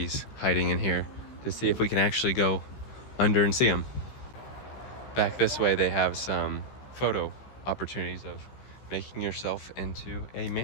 hiding in here, to see if we can actually go under and see them. Back this way they have some photo opportunities of making yourself into a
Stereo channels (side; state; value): right; late; 15 ms